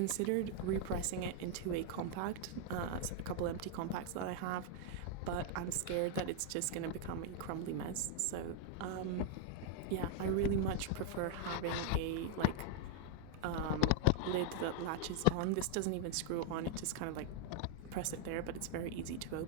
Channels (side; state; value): both; different; correlation 0.00